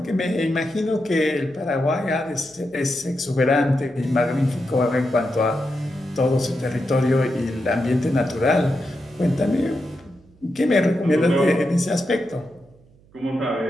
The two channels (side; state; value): right; noise; hum, 29 dB below the sound